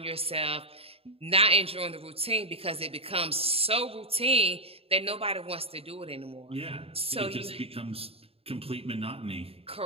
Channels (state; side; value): late; left; 0.28 ms